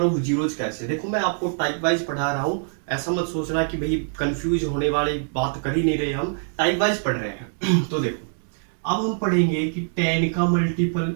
ऑफ जीरोज कैसे। देखो मैं आपको टाइप वाइज पढ़ा रहा हूं, ऐसा मत सोचना कि भाई कंफ्यूज होने वाली बात कर ही नहीं रहे, हम टाइप वाइज पढ़ रहे हैं। तो देखो अब हम पढ़ेंगे कि 10 का मल्टीपल,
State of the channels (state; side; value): silent; left; 63 dB below the other